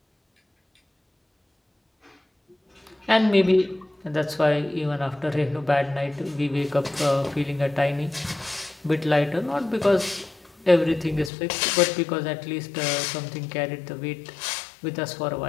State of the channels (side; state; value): right; drops out; at 11.3 s